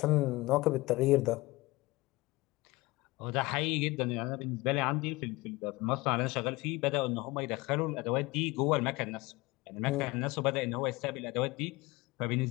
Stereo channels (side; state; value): right; quieter; 21.6 dB